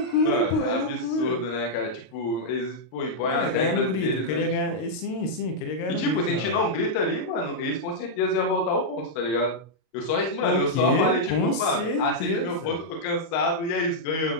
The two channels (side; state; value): right; late; 32 ms